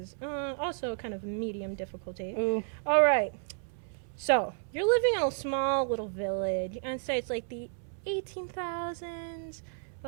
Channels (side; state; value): left; silent; 56 dB below the other